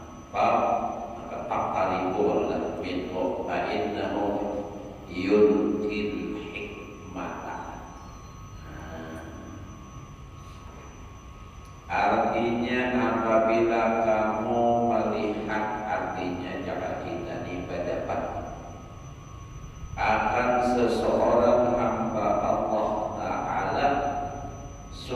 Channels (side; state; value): both; identical; correlation 1.00